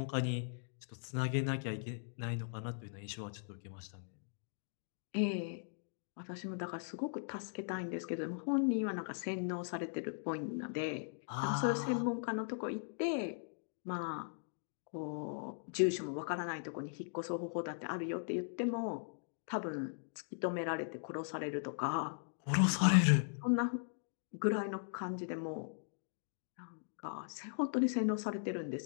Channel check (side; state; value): right; silent; digital silence